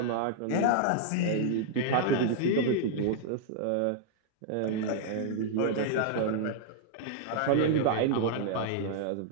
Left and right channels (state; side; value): different; both; correlation -0.01